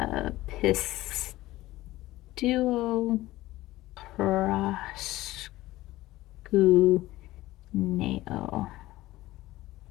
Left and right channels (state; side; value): quieter; right; 17.1 dB